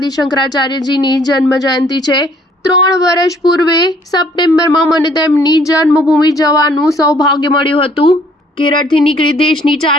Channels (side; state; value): both; normal; correlation 0.61